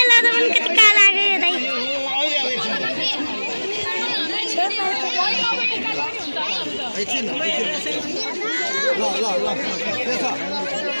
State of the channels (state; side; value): inverted; both; correlation -1.00